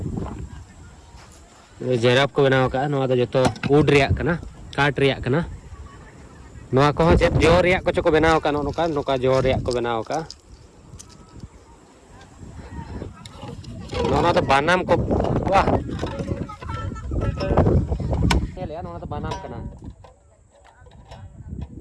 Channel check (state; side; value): identical; both; correlation 1.00